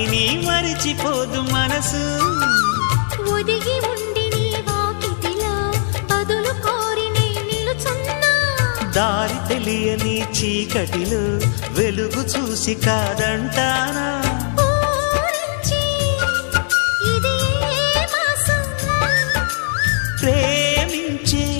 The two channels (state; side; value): silent; right; digital silence